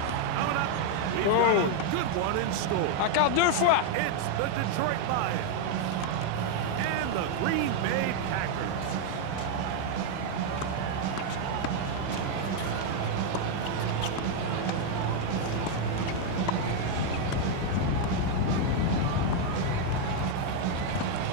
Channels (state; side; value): different; both; correlation 0.00